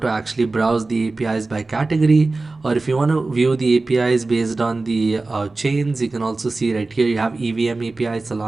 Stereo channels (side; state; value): left; quieter; 3.4 dB